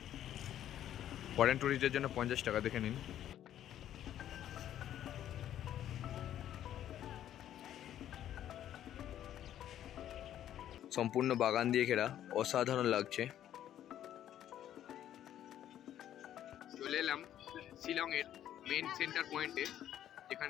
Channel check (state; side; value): quieter; right; 11.3 dB